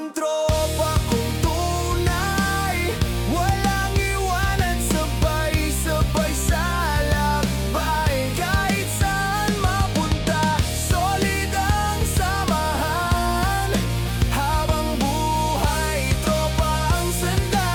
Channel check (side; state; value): both; identical; correlation 1.00